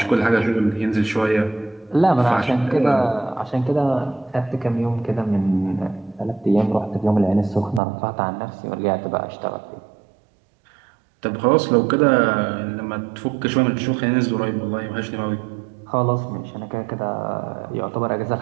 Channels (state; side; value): drops out; left; at 7.8 s